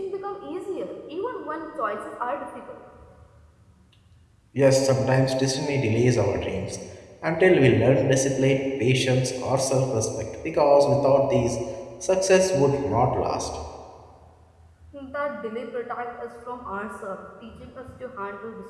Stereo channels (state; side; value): identical; both; correlation 1.00